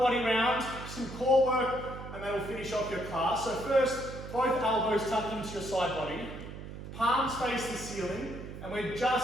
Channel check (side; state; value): right; noise; hum, 11 dB below the sound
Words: round, some core work, and then we'll finish off your class. So first, both elbows tucked into your side body. Palms face the ceiling, and we're